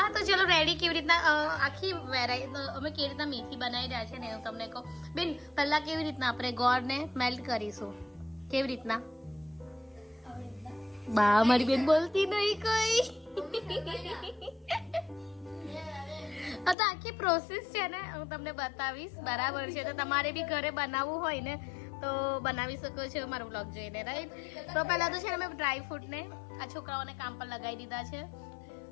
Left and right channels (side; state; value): right; drops out; at 16.8 s